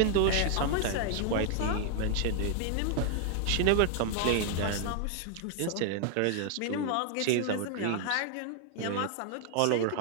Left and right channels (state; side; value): different; both; correlation 0.00